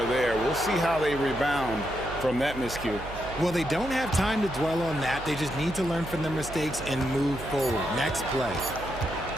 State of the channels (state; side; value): noise; right; hum, 12 dB below the sound